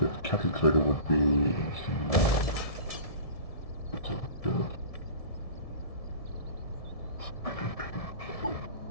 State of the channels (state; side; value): late; right; 1.7 ms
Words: that cattle trader would be interesting. It's a good.